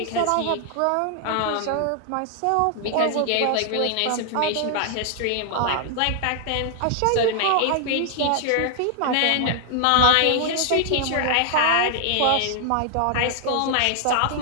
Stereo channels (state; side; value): different; both; correlation 0.00